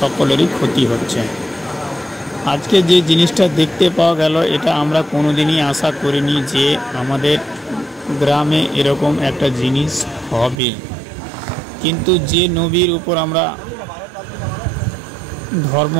ক্ষতি হচ্ছে। আজকে যে জিনিসটা দেখতে পাওয়া গেল, এটা আমরা কোনোদিনই আশা করিনি যে আমাদের গ্রামে এরকম একটা জিনিস হবে। কিন্তু যে নবীর উপর আমরা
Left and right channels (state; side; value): drops out; left; at 10.6 s